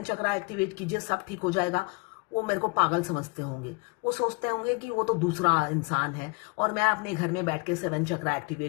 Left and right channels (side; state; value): right; quieter; 29.6 dB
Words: चक्रा एक्टिवेट कीजिए सब ठीक हो जाएगा, वो मेरे को पागल समझते होंगे। वो सोचते होंगे कि वो तो दूसरा इंसान है और मैं अपने घर में बैठ के 7 चक्रा